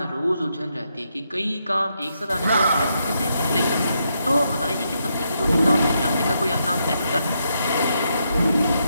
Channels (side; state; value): both; inverted; correlation -0.80